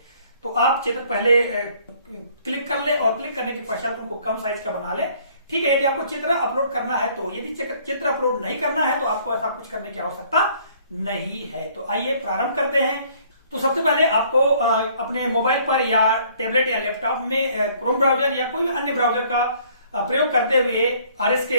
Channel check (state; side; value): inverted; both; correlation -0.60